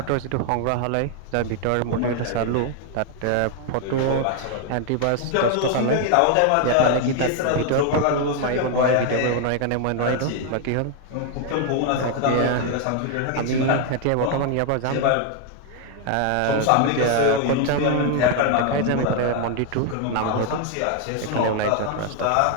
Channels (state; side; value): different; both; correlation 0.00